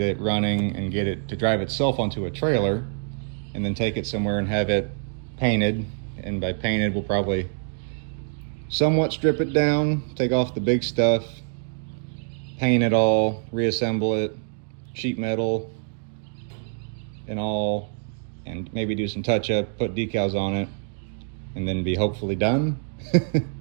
it running and get it to drive itself onto a trailer, and then take it somewhere and have it painted. And by painted, we'll probably somewhat strip it down, take off the big stuff, paint it all, reassemble it, sheet metal and all, and maybe do some touch up, put decals on it, and then be hopefully done.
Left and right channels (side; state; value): left; silent; 62 dB below the other